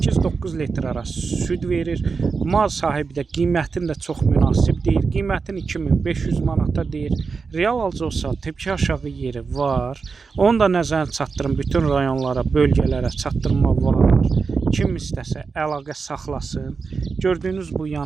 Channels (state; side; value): quieter; left; 4.9 dB